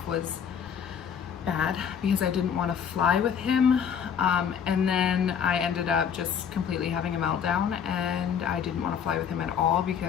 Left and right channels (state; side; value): quieter; right; 7.8 dB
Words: was bad, because I didn't want to fly with him. And then I ended up just completely having a meltdown, and I didn't want to fly with him at all